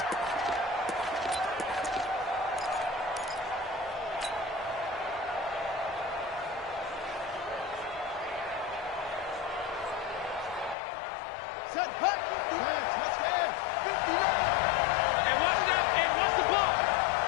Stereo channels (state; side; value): drops out; right; at 10.8 s